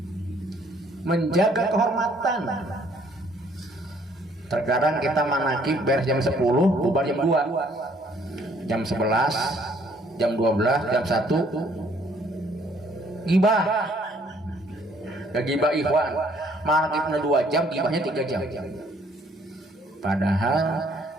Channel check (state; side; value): normal; both; correlation 0.63